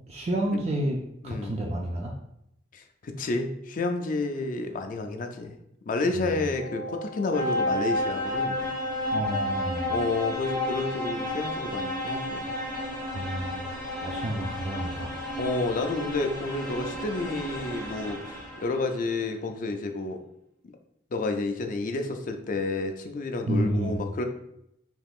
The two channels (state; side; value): normal; both; correlation 0.32